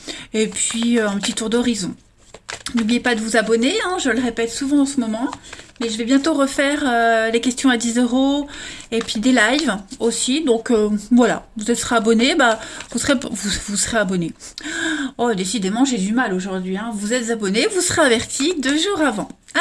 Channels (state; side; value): identical; both; correlation 1.00